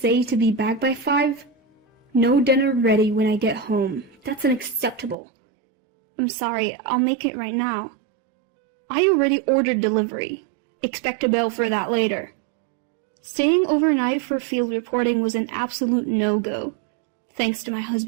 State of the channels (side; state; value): left; drops out; at 5.2 s